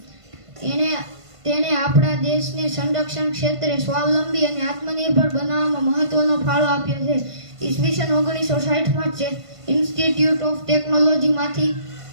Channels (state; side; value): late; left; 1.5 ms